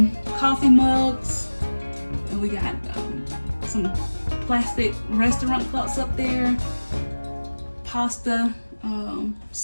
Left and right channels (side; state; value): both; inverted; correlation -1.00